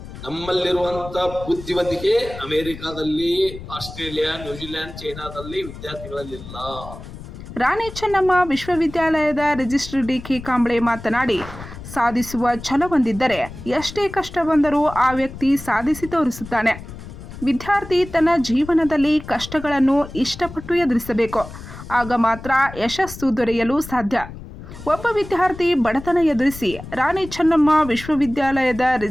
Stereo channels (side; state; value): left; noise; rumble, 13 dB below the sound